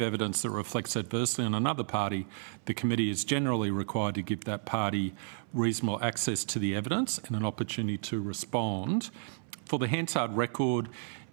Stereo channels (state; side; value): silent; left; 57 dB below the other